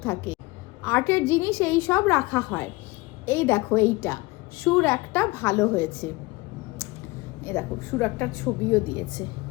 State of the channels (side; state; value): right; quieter; 22.8 dB